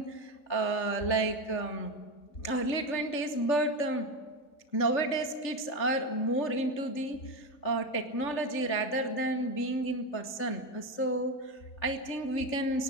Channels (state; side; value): late; right; 3.4 ms